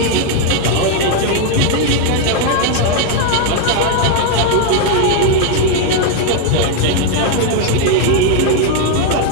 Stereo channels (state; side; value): different; both; correlation 0.01